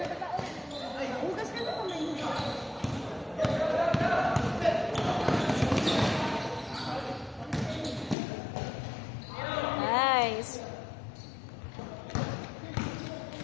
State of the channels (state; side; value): drops out; right; at 8.2 s